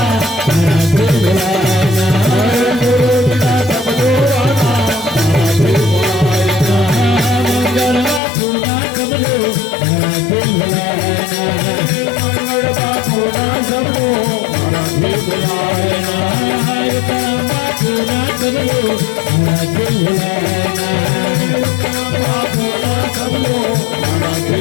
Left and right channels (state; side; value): drops out; right; at 8.2 s